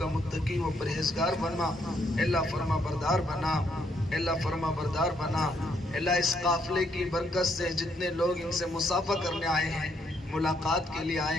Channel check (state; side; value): normal; both; correlation 0.73